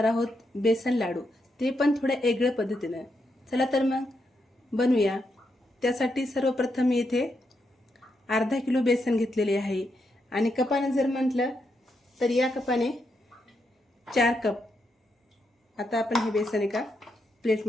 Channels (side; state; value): both; normal; correlation 0.82